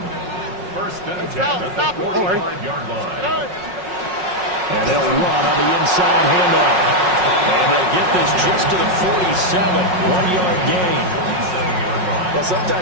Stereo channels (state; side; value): late; left; 5.5 ms